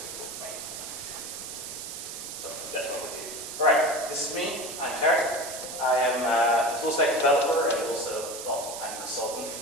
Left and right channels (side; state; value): right; noise; hiss, 8 dB below the sound